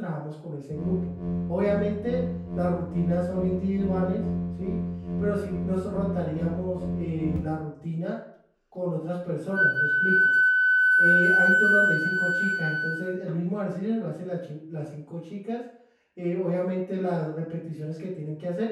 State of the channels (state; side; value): identical; both; correlation 1.00